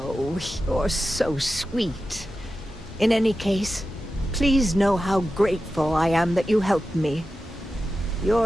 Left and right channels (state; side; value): normal; both; correlation 0.92